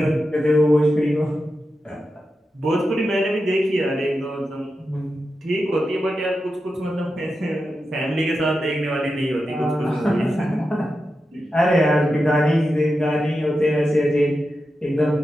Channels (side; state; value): both; normal; correlation 0.90